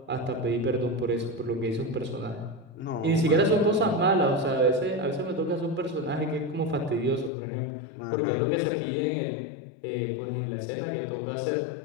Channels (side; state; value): right; drops out; at 7.3 s